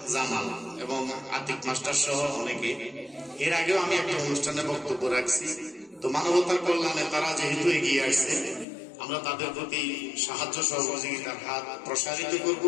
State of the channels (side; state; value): right; drops out; at 8.7 s